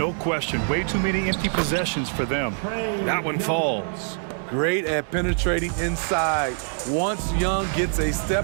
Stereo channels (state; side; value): silent; left; digital silence